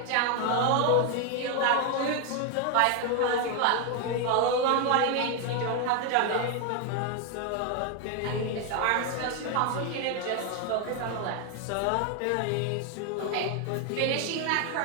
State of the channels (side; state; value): both; different; correlation 0.01